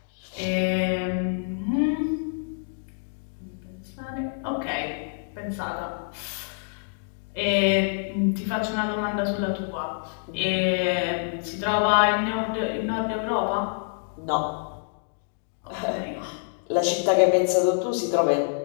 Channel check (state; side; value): silent; right; digital silence